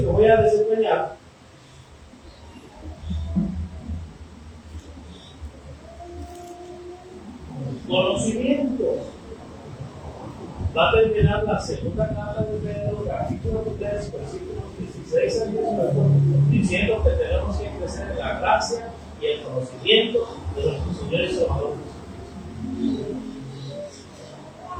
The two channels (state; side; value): identical; both; correlation 1.00